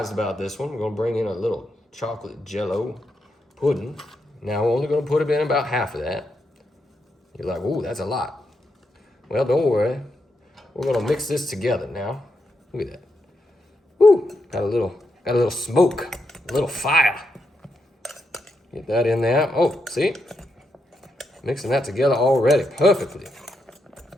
about this one. We're gonna bring in a little chocolate jello pudding. Now, we're only gonna put in about half of that. You're like, ooh, that's a lot. Well, don't worry. We're gonna mix this together now. Look at that. Woo, got a little smoke, a little fire. Get that in there. Oh, see? Mixing that together already perfectly.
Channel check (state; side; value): normal; both; correlation 0.83